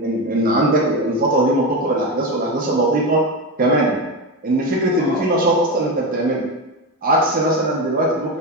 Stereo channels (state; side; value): normal; both; correlation 0.16